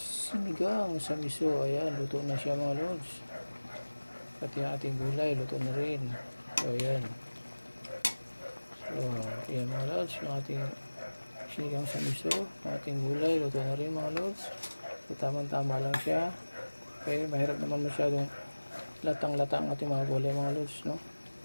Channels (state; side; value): inverted; both; correlation -1.00